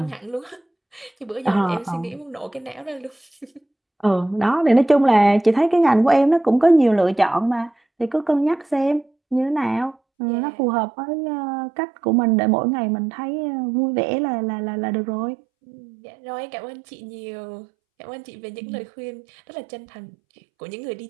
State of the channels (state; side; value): drops out; left; at 10.0 s